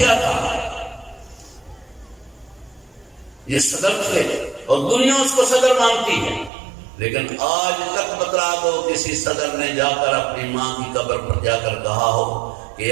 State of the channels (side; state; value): left; drops out; at 6.5 s